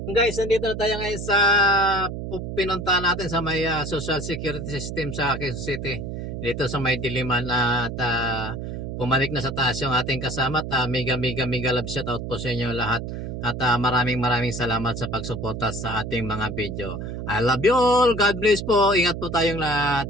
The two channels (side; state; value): right; noise; hum, 6 dB below the sound